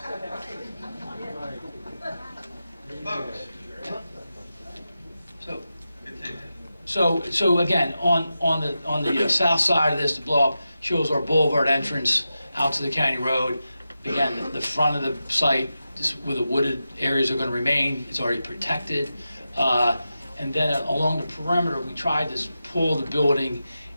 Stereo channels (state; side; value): inverted; both; correlation -0.91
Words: Folks. Continue. So again, on the south side of this, the blow up shows our boulevard entrance out to the county road. Again, the front of the site, just where the wooded areas are going to remain, it's already protected. And then along the perimeter, we tried to pull the building